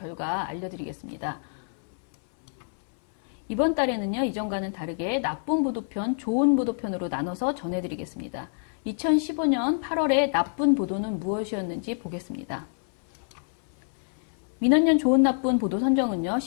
알려드리겠습니다. 이번 달에는요, 이전과는 다르게 나쁜 보도편, 좋은 보도편으로 나눠서 전해드리겠습니다. 2015년 8월에 나쁜 보도는 무엇이었는지 보겠습니다. 민원연 좋은, 나쁜 보도 선정은요,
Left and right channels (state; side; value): silent; right; 60 dB below the other